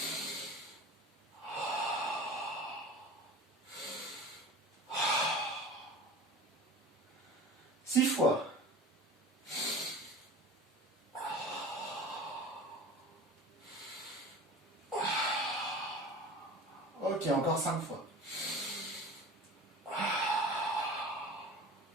6 fois. Ok, encore 5 fois.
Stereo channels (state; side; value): normal; both; correlation 0.37